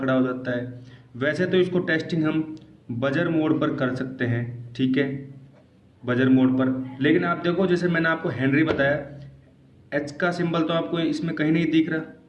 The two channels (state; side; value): identical; both; correlation 1.00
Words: हो जाता है। वैसे तो इसको टेस्टिंग हम बजर मोड पर कर सकते हैं, ठीक है, बजर मोड पर। लेकिन आप देखो, जैसे मैंने आपको हेनरी बताया, एच का सिंबल तो आपको इसमें कहीं नहीं दिख रहा,